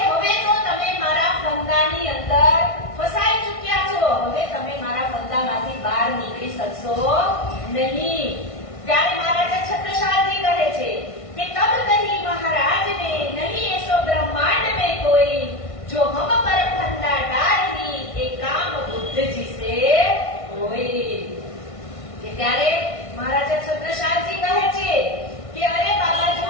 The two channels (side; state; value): right; late; 1.5 ms